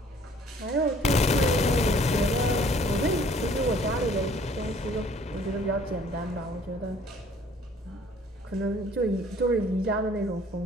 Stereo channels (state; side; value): normal; both; correlation 0.56